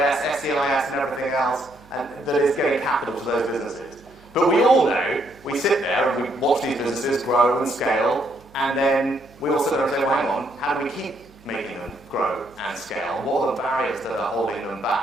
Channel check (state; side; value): noise; right; hum, 26 dB below the sound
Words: SEIS, and everything else, and that is getting capital to those businesses. But we all know, we sit there and we watch these businesses grow and scale, and then we all sit there and say, well, hang on, how do we keep making them grow and scale? What are the barriers that are holding them